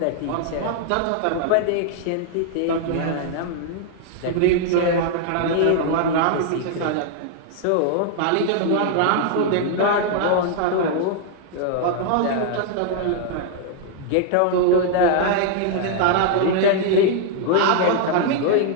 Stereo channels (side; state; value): both; different; correlation -0.01